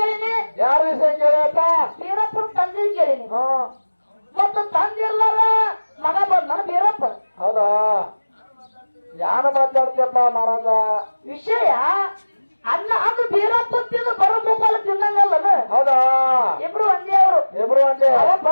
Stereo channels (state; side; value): inverted; both; correlation -1.00